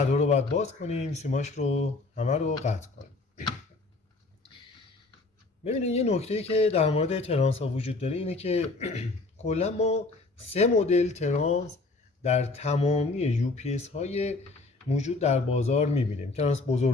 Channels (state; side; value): quieter; right; 3.4 dB